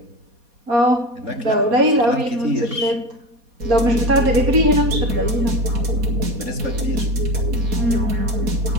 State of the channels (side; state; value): left; late; 4.2 ms